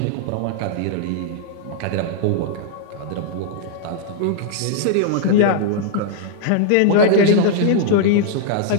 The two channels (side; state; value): both; different; correlation -0.01